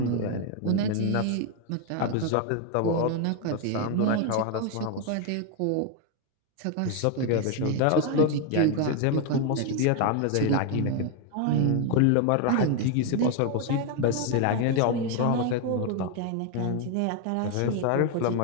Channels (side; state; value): both; different; correlation 0.01